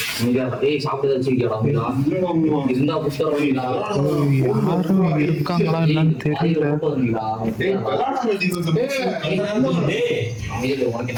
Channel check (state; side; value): identical; both; correlation 1.00